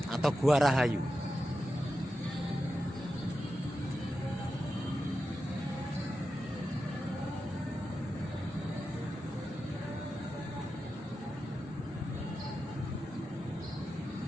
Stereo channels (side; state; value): both; normal; correlation 0.90